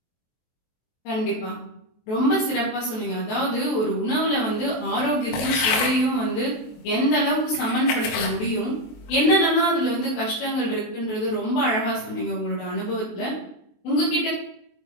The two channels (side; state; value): right; late; 23 ms